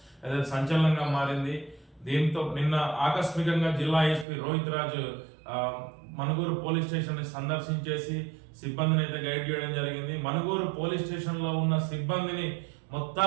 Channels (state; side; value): drops out; left; at 4.2 s